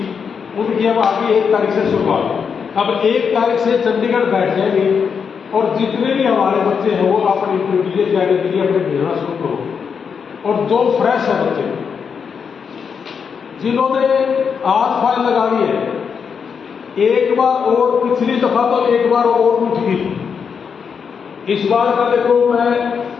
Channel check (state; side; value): quieter; right; 6.4 dB